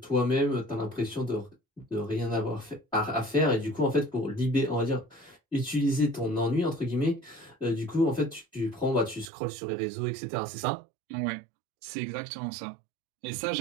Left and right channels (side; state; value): left; drops out; at 9.3 s